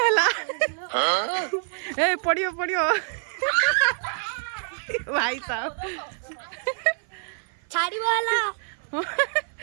ए पड़ियो भाई साहब छाड़ी वाला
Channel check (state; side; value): silent; left; 56 dB below the other